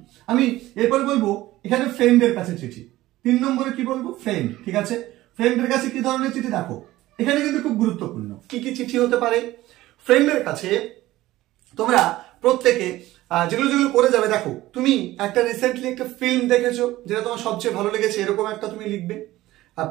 আমি এরপর বলবো এখানে ফ্রেন্ডের কাছে চিঠি। 3 নম্বরে কি বলবো? ফ্রেন্ড, ঠিক আছে, ফ্রেন্ডের কাছে কি ধরনের চিঠি? দেখো এখানে কিন্তু খুব গুরুত্বপূর্ণ, কি কি চিঠি হতে পারে। ফ্রেন্ডের কাছে তোমরা প্রত্যেকে যেগুলো করে যাবে, দেখো তুমি একটা রিসেন্টলি একটা ফিল্ম দেখেছো যেটা তোমার সবচেয়ে ভালো লেগেছে, এরকম একটা তুমি লিখবে,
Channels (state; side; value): quieter; left; 16.5 dB